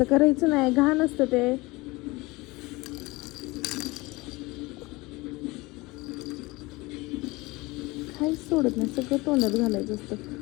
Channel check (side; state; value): right; quieter; 22.5 dB